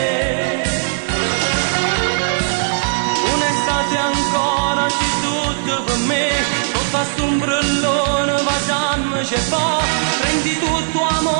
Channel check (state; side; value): silent; left; digital silence